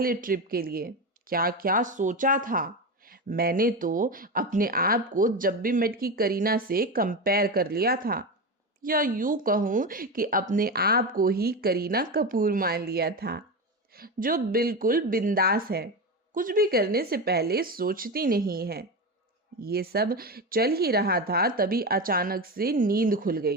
ट्रिप के लिए, क्या क्या सोचा था। मैंने तो अपने आप को जब भी मेट की करीना से कंपेयर कर लिया था, या यूं कहूं कि अपने आप को ही करीना कपूर मान लिया था, जो बिल्कुल बिंदास है, कुछ भी करने से पहले सोचती नहीं है। ये सब चल ही रहा था, तभी अचानक से नींद खुल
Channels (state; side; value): normal; both; correlation 0.19